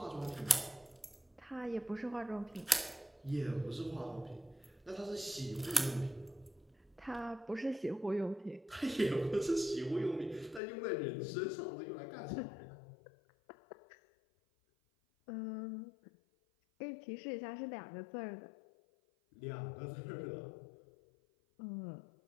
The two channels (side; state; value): right; drops out; at 10.6 s